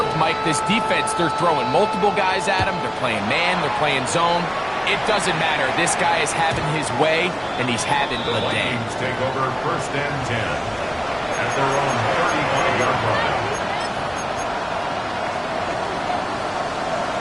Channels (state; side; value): identical; both; correlation 1.00